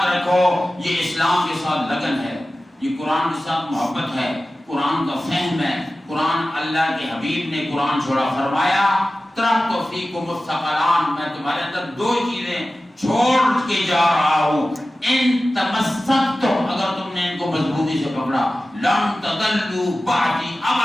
رکھو، یہ اسلام کے ساتھ لگن ہے، یہ قرآن کے ساتھ محبت ہے، قرآن کا فہم ہے۔ قرآن اللہ کے حبیب نے قرآن چھوڑا، فرمایا ترکت فیکم الثقلان، میں تمہارے اندر 2 چیزیں چھوڑ کے جا رہا ہوں، ان تمسکتم، اگر تم نے ان کو مضبوطی سے پکڑا، لن تضلوا بعدی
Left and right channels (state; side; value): normal; both; correlation 0.95